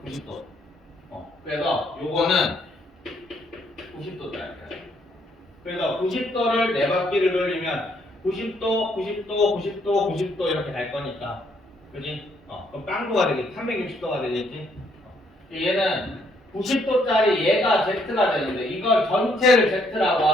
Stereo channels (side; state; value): both; normal; correlation 0.70